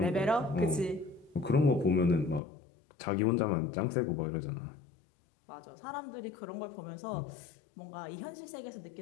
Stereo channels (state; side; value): drops out; right; at 2.4 s